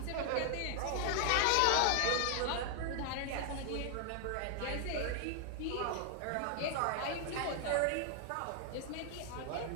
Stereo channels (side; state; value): both; different; correlation 0.00